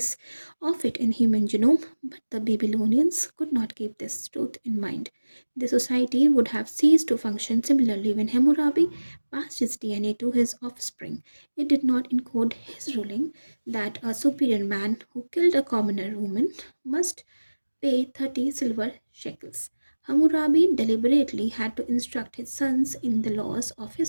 of it in human genome, but the Babylonians could not keep this truth in mind. The society would have ceased to function similarly when Hammurabi passed his DNA to his offspring. It did not encode his ruling that a superior man who killed a commoner woman must pay 30 silver shekels. Hammurabi deliberately had to instruct his sons in the laws of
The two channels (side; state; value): both; inverted; correlation -1.00